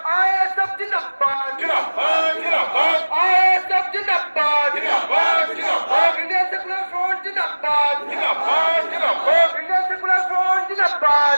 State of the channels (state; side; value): inverted; both; correlation -1.00